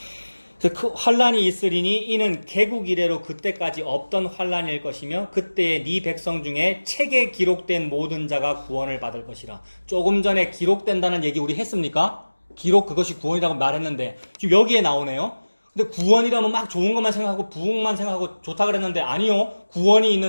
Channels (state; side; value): inverted; both; correlation -1.00